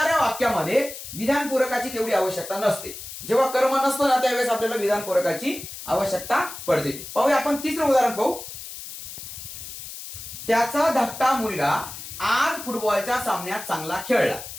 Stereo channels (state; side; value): noise; left; hiss, 11 dB below the sound